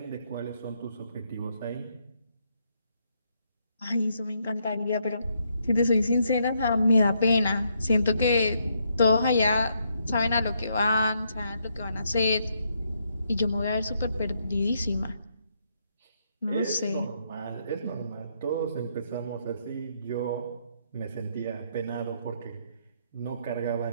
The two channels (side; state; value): both; inverted; correlation -0.75